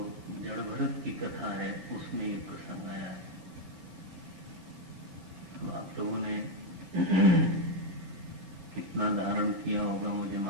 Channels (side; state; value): left; late; 11 ms